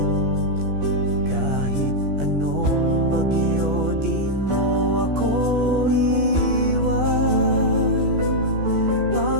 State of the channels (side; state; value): left; late; 14 ms